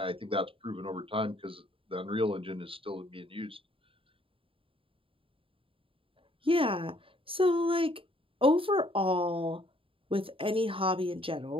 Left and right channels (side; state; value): left; late; 0.26 ms